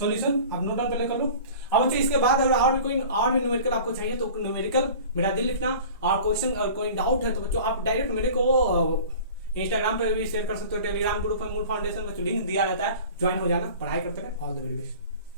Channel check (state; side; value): inverted; both; correlation -0.42